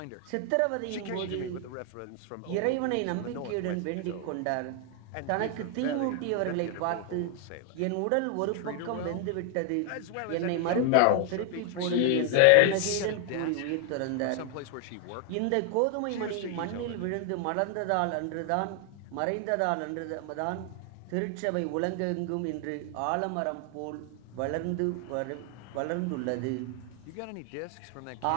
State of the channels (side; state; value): both; different; correlation 0.00